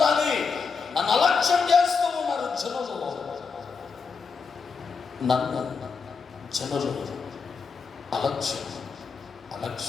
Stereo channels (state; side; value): quieter; right; 5.2 dB